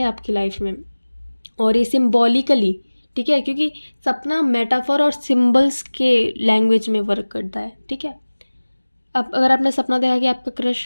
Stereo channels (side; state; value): both; inverted; correlation -1.00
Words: आपकी लाइफ में, और ये सिम्बॉलिकली, ठीक है, क्योंकि सपना मेटाफर और सिंबल्स के लैंग्वेज में वर्क करता है, ठीक है। अब अगर आपने सपना देखा कि आपका